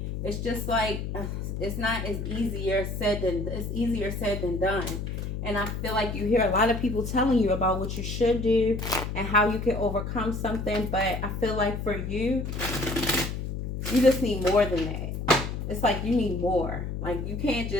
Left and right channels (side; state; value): left; noise; hum, 4 dB below the sound